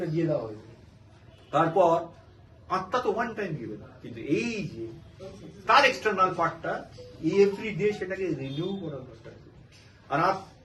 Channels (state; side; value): identical; both; correlation 1.00